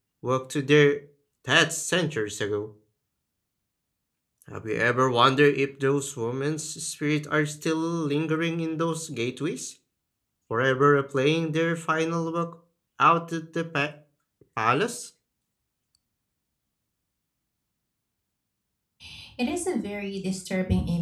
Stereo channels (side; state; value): both; identical; correlation 1.00